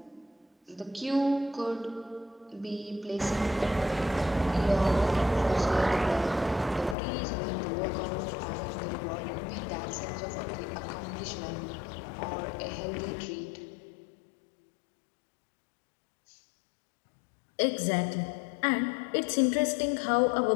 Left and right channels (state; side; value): drops out; right; at 7.0 s